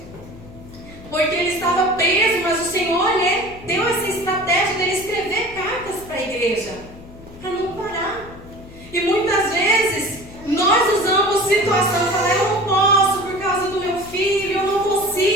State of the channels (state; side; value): noise; left; hum, 19 dB below the sound